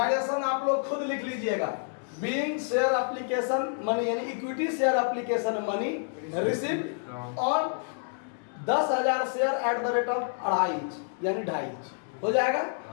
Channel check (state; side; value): silent; right; digital silence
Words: आप लोग खुद लिख लीजिएगा। बीइंग शेयर एप्लीकेशन मनी, यानी equity share application money receive on 10,000 share at the rate of 2.5 यानी 2.5 हो जाएगा।